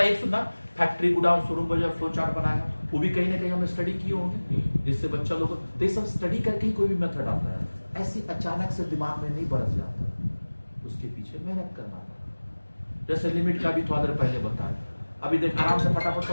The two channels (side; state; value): both; inverted; correlation -1.00